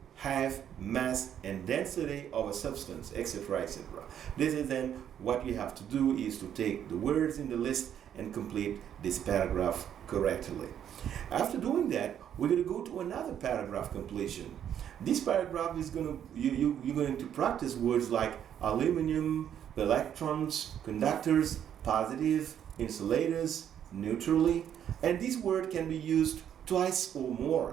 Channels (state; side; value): quieter; left; 9.6 dB